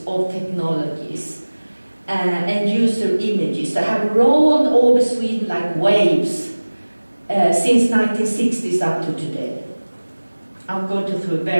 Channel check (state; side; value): inverted; both; correlation -1.00